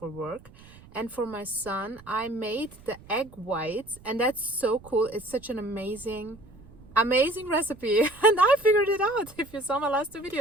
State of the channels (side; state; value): right; noise; rumble, 22 dB below the sound